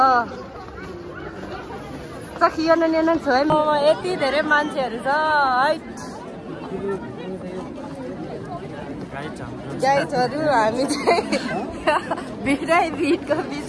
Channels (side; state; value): both; identical; correlation 1.00